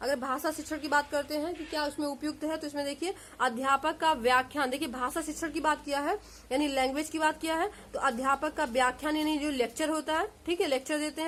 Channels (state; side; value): identical; both; correlation 1.00